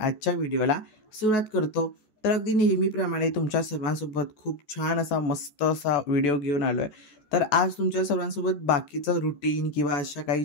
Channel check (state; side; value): late; right; 14 ms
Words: आजच्या व्हिडिओला सुरुवात करतो. तर अगदी नेहमीप्रमाणे तुमच्या सर्वांसोबत खूप छान असा मस्त असा व्हिडिओ घेऊन आलो आहे. तर आज तुमच्या सर्वांसोबत बाकीचं रुटीन किंवा अशा काही